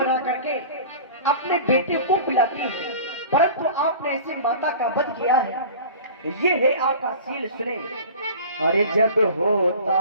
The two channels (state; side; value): inverted; both; correlation -0.39